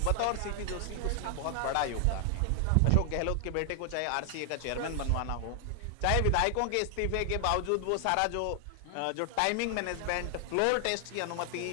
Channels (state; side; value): different; both; correlation 0.00